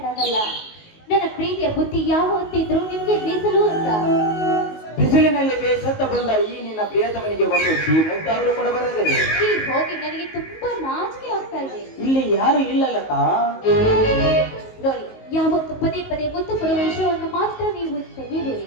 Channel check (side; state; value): right; late; 19 ms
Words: ನನ್ನ ಪ್ರೀತಿಯ ಬುದ್ಧಿ ಯಾವ ಹೊತ್ತಿದ್ರು ನಿಮ್ಗೆ ಮೀಸಲು ಅಂತ. ಬಿಸಿಲಿನಲ್ಲಿ ಬೇಸತ್ತ ಬಂದ ಈ ನಿನ್ನ ಪ್ರಿಯತಮನಿಗೆ ಒಂದು ಮುದ್ದಾದರೂ ಕೊಡಬಾರದೆ. ಹೋಗಿ ನನಗೆ ತುಂಬಾ ನಾಚಿಕೆ ಆಗ್ತಾ ಇದೆ. ಇಲ್ಲಿ ಯಾರು ಇಲ್ಲ ಲತಾ. ನೋಡಿ, ಯಾವತ್ತು ಪದೇ ಪದೇ ಮುತ್ತು ಕೊಡುವ ವಿಷಯವನ್ನು ಮಾತ್ರ ನೀವು ತೆಗೆಯಬೇಡಿ.